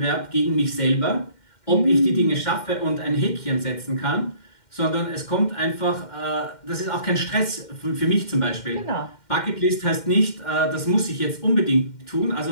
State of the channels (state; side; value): late; right; 2.1 ms